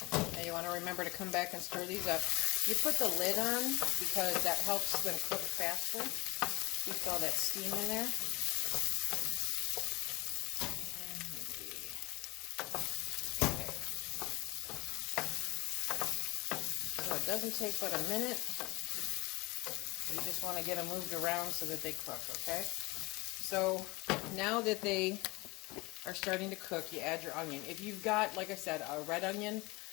Now you want to remember to come back and stir these up. You put the lid on because that helps them cook faster. Keeps all that steam in there. Okay. So it doesn't take but a minute. You just want to get them moved around so that they cook, okay? So now that they are starting to cook, you add your onion. If you've got, like I said, a red onion,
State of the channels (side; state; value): right; quieter; 23.8 dB